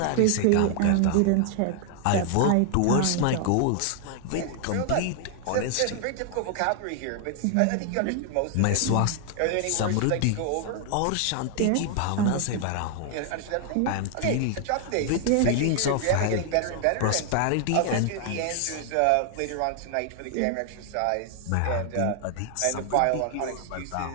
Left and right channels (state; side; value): different; both; correlation 0.00